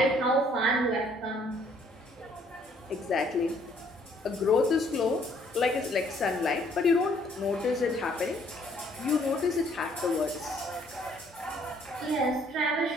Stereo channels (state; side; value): normal; both; correlation 0.63